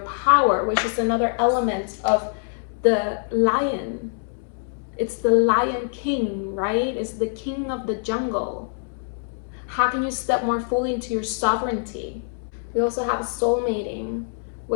power, which is another element of the lion. It's the lion king, right? It's the king of the jungle. How can you step more fully into your sovereignty? We also have soul mating,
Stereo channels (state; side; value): silent; right; 62 dB below the other